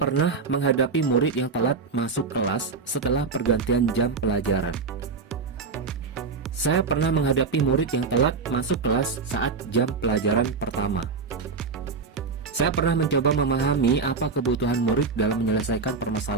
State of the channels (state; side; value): quieter; left; 4.8 dB